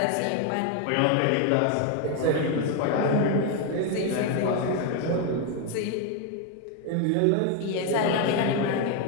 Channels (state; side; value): different; both; correlation 0.01